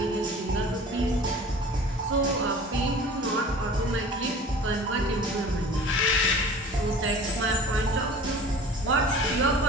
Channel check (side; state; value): both; normal; correlation 0.42